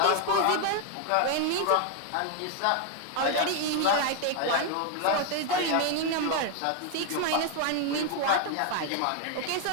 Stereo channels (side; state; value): both; different; correlation 0.00